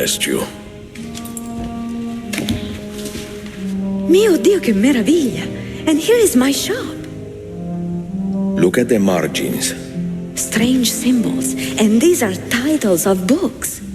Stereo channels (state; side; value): identical; both; correlation 1.00